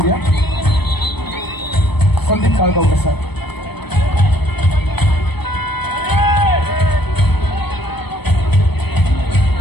संदीप काळगावकर सर.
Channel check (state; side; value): late; right; 0.98 ms